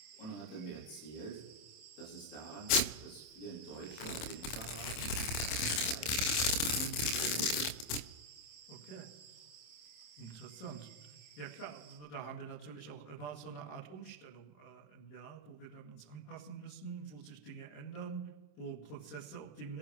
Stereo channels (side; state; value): right; late; 27 ms